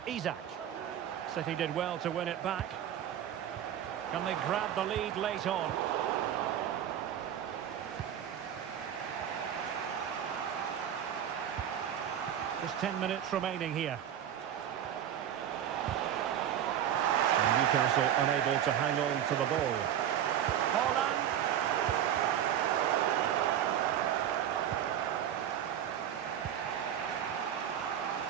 Isaac. City did well to win it back. Can they grab the lead late on? Just 10 minutes remaining here. And Newcastle unable to hang on to the ball. Holland.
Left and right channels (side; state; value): left; quieter; 10.1 dB